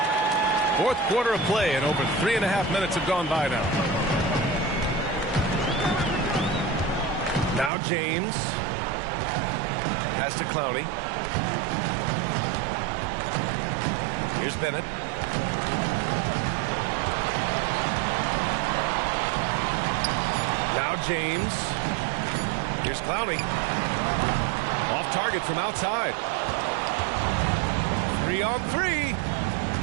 Fourth quarter of play, and over 3.5 minutes have gone by now. Now James. Pass to Clowney. Here's Bennett. Now James. Here's Clowney. Off target from outside. 3-on-3.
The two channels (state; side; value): drops out; left; at 7.7 s